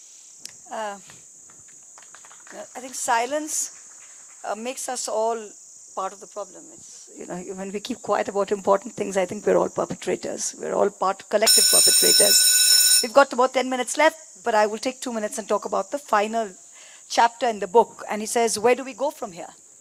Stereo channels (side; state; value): both; identical; correlation 1.00